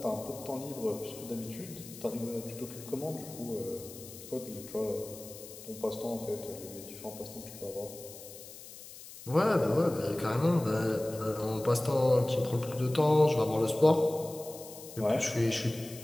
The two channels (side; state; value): left; noise; hiss, 15 dB below the sound